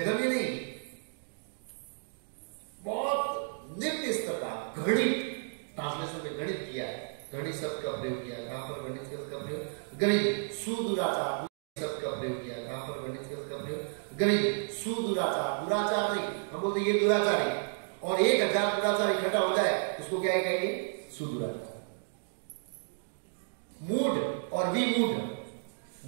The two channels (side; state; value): left; silent; digital silence